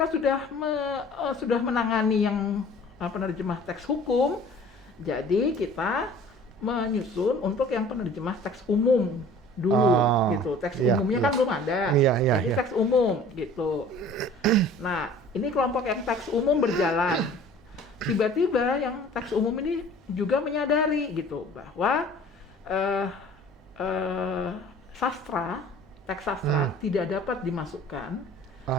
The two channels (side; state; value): both; normal; correlation 0.48